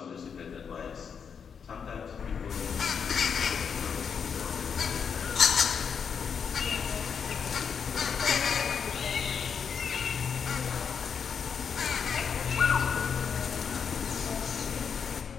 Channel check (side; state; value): right; quieter; 6.7 dB